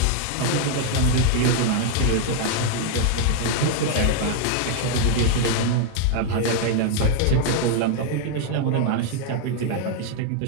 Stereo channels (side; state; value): both; different; correlation 0.00